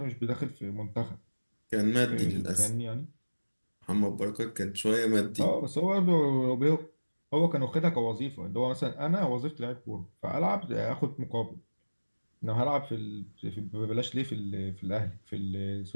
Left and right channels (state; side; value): inverted; both; correlation -1.00